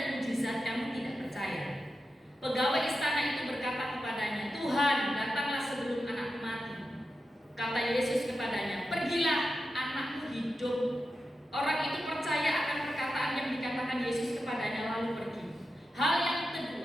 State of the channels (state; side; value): normal; both; correlation 0.90